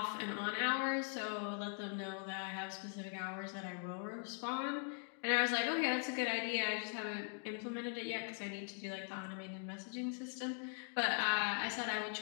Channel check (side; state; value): right; silent; 50 dB below the other